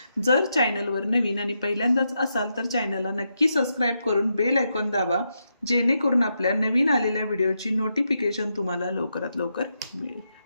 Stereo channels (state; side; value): inverted; both; correlation -0.83